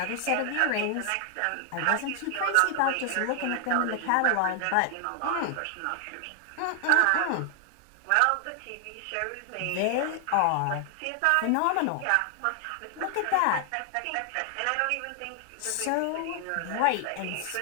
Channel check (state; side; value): different; both; correlation 0.00